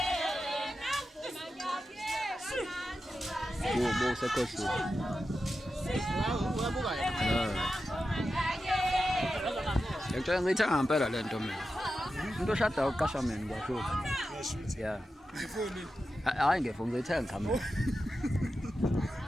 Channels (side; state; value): both; normal; correlation 0.91